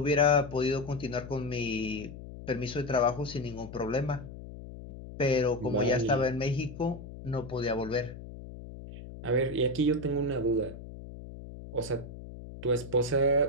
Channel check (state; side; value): noise; left; hum, 13 dB below the sound